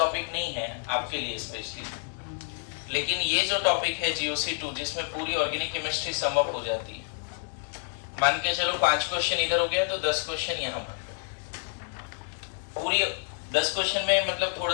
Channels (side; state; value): right; silent; 58 dB below the other